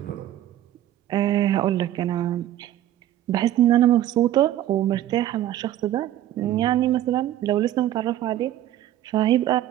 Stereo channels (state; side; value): quieter; left; 12.8 dB